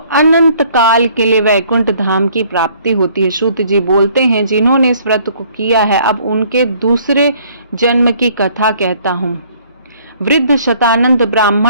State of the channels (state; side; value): inverted; both; correlation -0.60